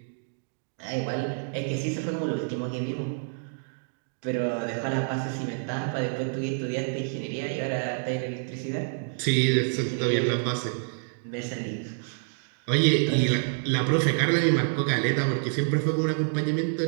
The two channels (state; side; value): silent; left; digital silence